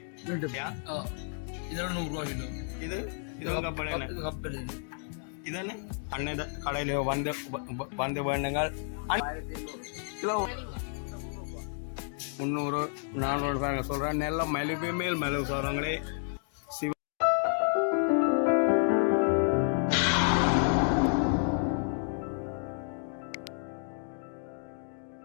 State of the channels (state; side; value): silent; right; 57 dB below the other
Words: இதெல்லாம் 100 ரூபா கிலோ. இதுவும் கப்பல் இதானே அன்னைய கடையில் வந்து வேண்டுங்கள். கிலோ 300 400 பாருங்க சொல்கிறேன். நெல்ல மெழுகு மேல் மெழுகு சொல்கிறாங்களே.